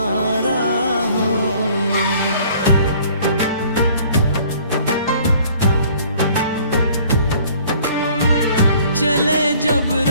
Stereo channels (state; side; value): inverted; both; correlation -0.55